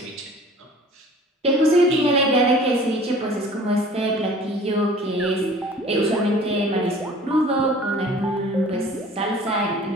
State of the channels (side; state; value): both; normal; correlation 0.47